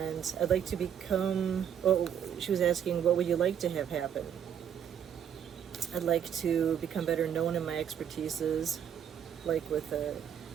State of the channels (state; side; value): quieter; left; 8.9 dB